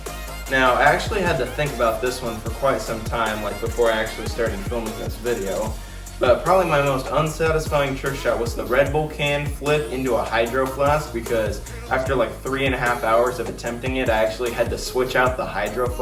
Now, I actually had to think about this one for quite some time, like before I actually started filming this video. But probably my most unsatisfying trick shot was the Red Bull can flip into a hydro flask, because after like 3.5 hours of attempting it, I actually had to switch out the hydro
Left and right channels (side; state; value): both; identical; correlation 1.00